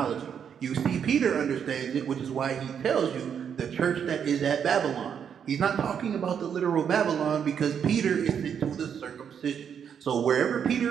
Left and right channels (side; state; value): left; quieter; 7.8 dB